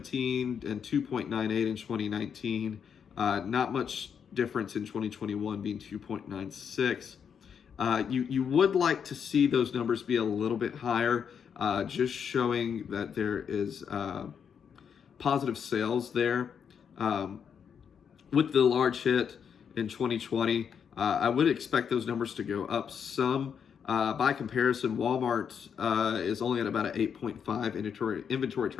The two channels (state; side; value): quieter; right; 7.3 dB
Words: and 2.98 in 2019. Not much difference in 2021 being 2.96. You would like to see those numbers be a little bit higher, just showing that there is positive sales there. With the large hit in 2020, I would expect those numbers to go up some. By comparison, Walmart is only at about an 8.5 inventory